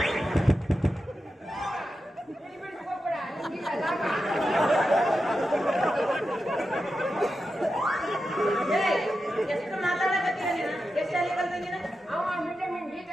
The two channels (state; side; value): normal; both; correlation 0.90